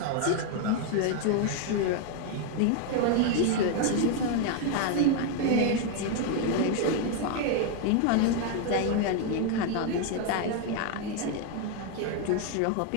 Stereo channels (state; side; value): different; both; correlation 0.01